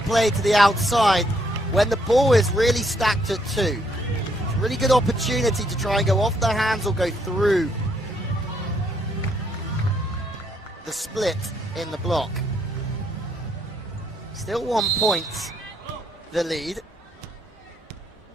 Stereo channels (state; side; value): normal; both; correlation 0.72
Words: play to the outside when the ball is really stacked at 2. It's a really good opportunity to try and go off their hands or go through the split in the block. Still 1 point, the lead.